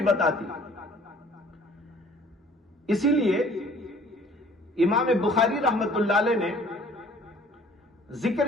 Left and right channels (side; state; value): both; normal; correlation 0.53